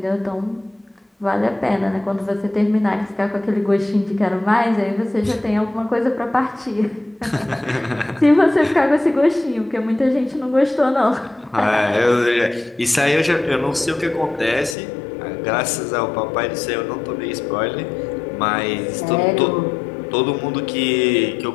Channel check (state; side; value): drops out; right; at 14.8 s